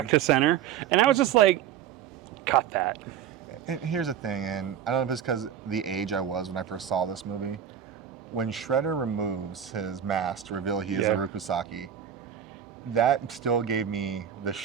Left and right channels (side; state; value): left; quieter; 9.2 dB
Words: to center, and I was just like, cut that. And here's the thing, and I don't know if it's because the age I was when I first saw this movie. When Shredder removes his mask to reveal he is a Rukusaki, that still gave me the